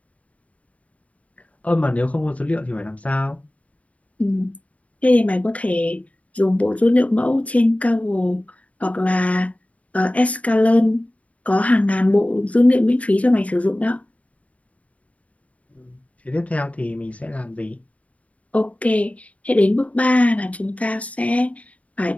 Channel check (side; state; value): right; late; 0.068 ms